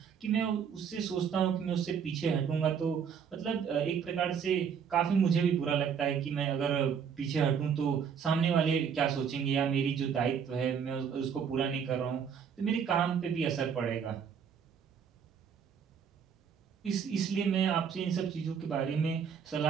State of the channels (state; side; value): quieter; left; 7.2 dB